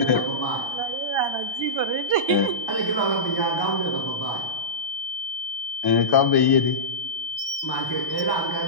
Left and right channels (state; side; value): late; right; 1.1 ms